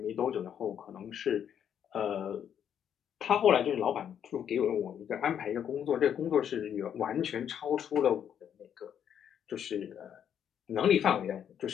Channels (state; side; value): quieter; right; 8.9 dB